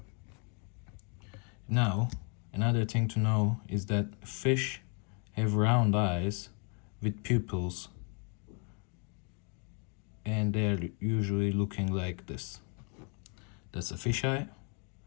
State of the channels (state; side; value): quieter; right; 37.7 dB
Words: Now, another thing to know is that fish have round eyes with pupils, and they're usually looking like this. That's a fish eye.